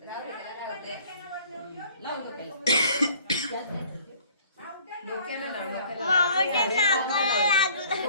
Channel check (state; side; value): inverted; both; correlation -0.54